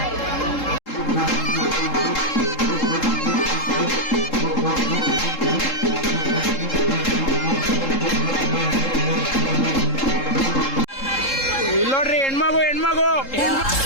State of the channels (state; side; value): late; right; 3.7 ms